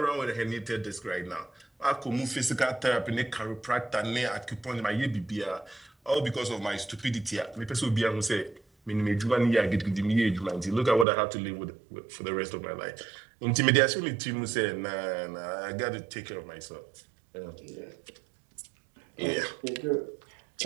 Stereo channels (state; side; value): drops out; left; at 11.1 s